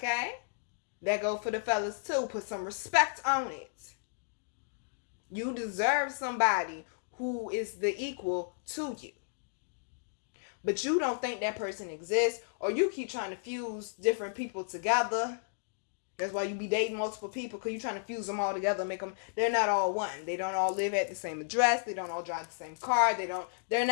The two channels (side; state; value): right; silent; digital silence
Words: That go for the fellas too. Put some respect on it. You deserve somebody who is the equal to you. But you don't think that person exists, or you keep trying to fuse different people together. That's why you be dating multiple people, because you're trying to fuse them all together, make them, they're not all one. They don't all live at the same address, they don't all drive the same car, they're